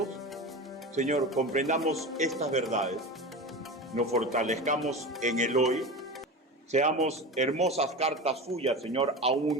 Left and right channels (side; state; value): both; normal; correlation 0.27